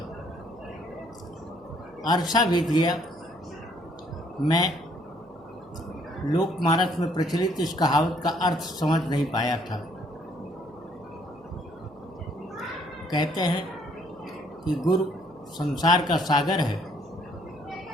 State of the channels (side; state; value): right; noise; hum, 28 dB below the sound